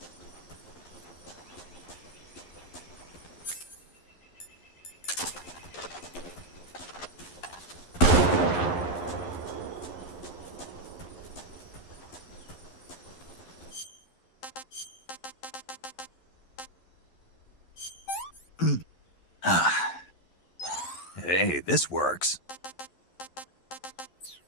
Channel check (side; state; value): right; late; 11 ms